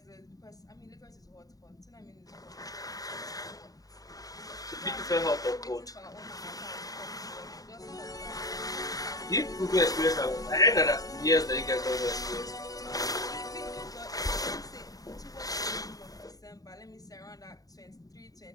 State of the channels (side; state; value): right; late; 0.18 ms